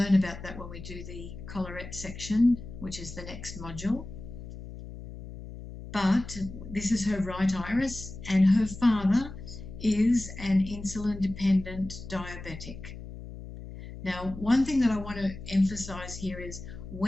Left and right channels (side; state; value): left; noise; hum, 12 dB below the sound